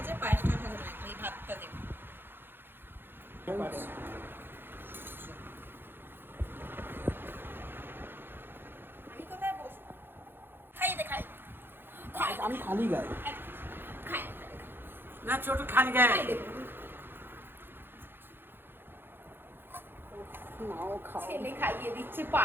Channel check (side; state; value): left; late; 0.10 ms